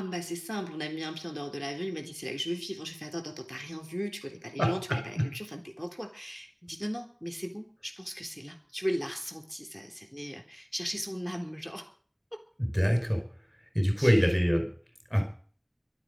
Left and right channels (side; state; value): both; identical; correlation 1.00